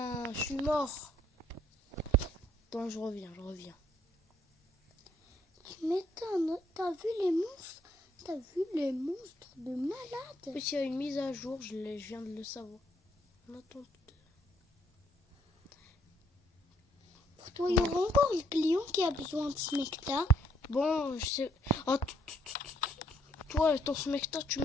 je suis mort. Attends, je reviens. Tu m'étonnes. T'as vu les monstres? T'as vu les monstres de malade? Oui, il y a une mise à jour, je viens de le savoir. On attend. Pour toi, il y aura encore le client qui a besoin de smecta. Bon, je sais. Oh, toi, ton smecta, tu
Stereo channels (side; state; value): both; normal; correlation 0.68